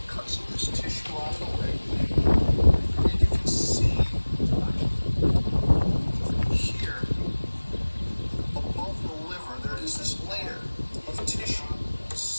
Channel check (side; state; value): both; inverted; correlation -1.00